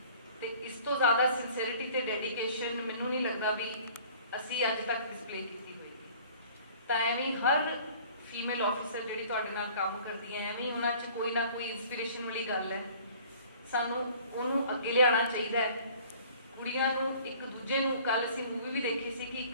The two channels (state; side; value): inverted; both; correlation -0.50